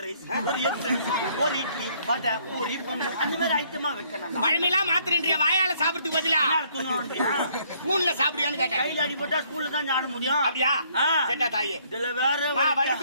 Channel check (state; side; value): inverted; both; correlation -0.65